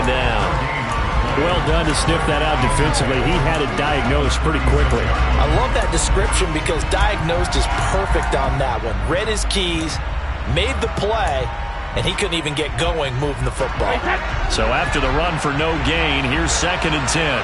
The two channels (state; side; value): identical; both; correlation 1.00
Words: down. Well done to sniff that out defensively. He had it diagnosed pretty quickly. I love that description because diagnosed is perfect on that one. Read his keys, made the play, and he couldn't even get going moving the football. So after the run for no gain, here's 2nd and 10.